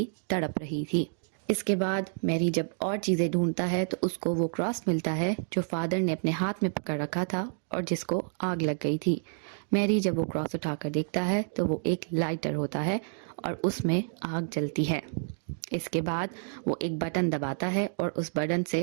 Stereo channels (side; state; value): left; silent; digital silence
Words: तड़प रही थी। इसके बाद मैरी जब और चीजें ढूंढता है तो उसको वो क्रॉस मिलता है जो फादर ने अपने हाथ में पकड़ रखा था और जिसको आग लग गई थी। मैरी जब वो क्रॉस उठाकर देखता है तो वो एक लाइटर होता है और उसमें आग जलती है। इसके बाद वो एक बटन दबाता है और उस बटन